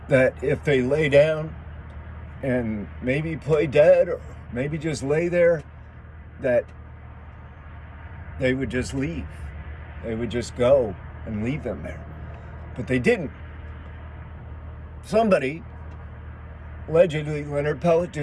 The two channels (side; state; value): both; identical; correlation 1.00